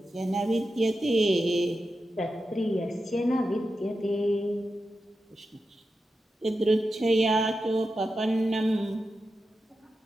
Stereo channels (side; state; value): both; normal; correlation 0.90